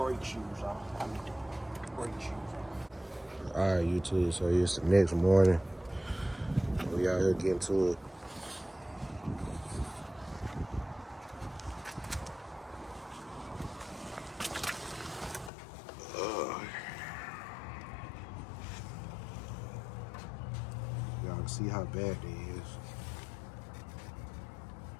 shoes off. I mean, the brake shoes off. All right, YouTube. So it's the next morning. We out here getting to it. Y'all can see how bad it is.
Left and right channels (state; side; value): drops out; right; at 15.5 s